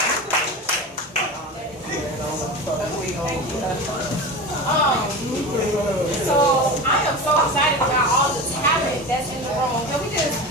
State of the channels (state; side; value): normal; both; correlation 0.28